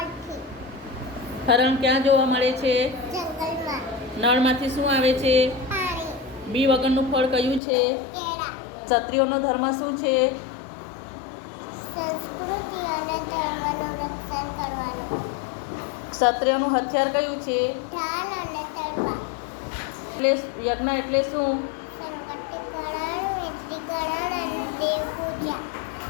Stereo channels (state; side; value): drops out; right; at 7.6 s